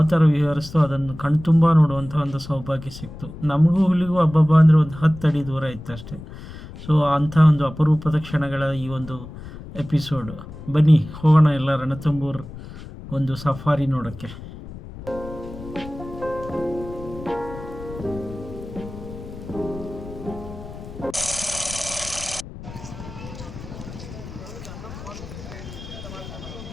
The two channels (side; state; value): left; noise; rumble, 13 dB below the sound